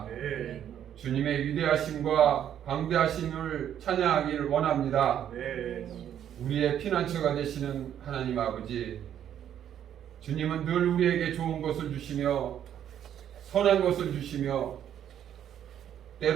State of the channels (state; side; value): quieter; left; 10.0 dB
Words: 주님의 위대하심과 광대하심을 찬양하기를 원합니다. 우리의 피난처가 되시는 하나님 아버지, 주님은 늘 우리에게 좋은 것을 주시며 선한 것을 주시며